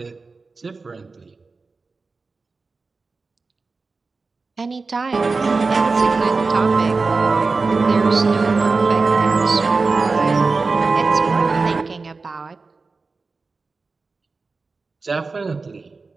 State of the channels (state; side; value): quieter; left; 4.1 dB